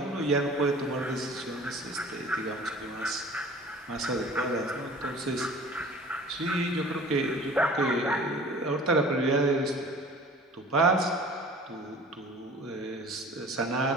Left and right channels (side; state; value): both; normal; correlation 0.45